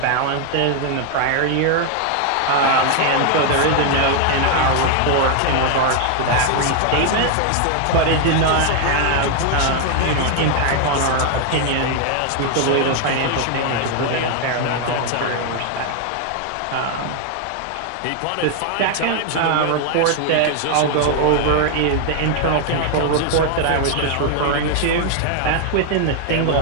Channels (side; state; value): both; different; correlation 0.00